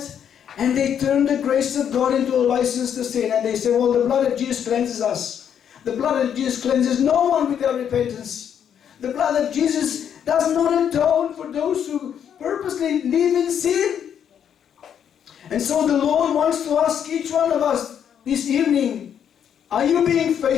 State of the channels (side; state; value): right; quieter; 8.7 dB